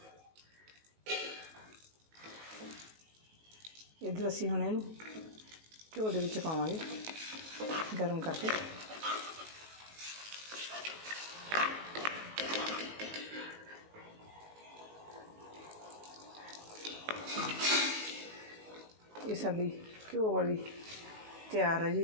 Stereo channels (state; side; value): late; left; 19 ms